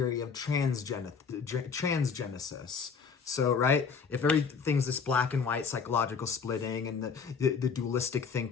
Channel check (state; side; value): quieter; right; 5.8 dB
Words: of transgenesis? So, right, if everything's this black and white psychological splitting and the dualistic